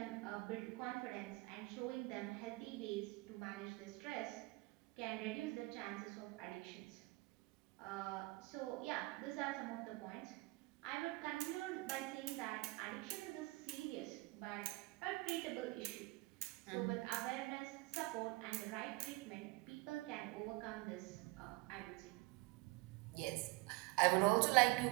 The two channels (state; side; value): quieter; left; 22.9 dB